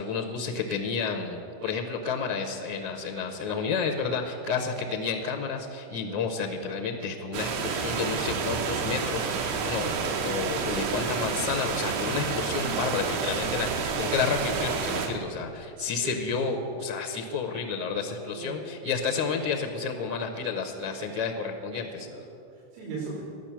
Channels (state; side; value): late; left; 27 ms